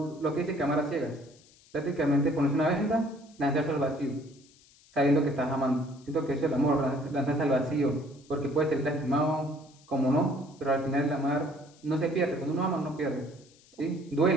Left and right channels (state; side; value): noise; left; hiss, 28 dB below the sound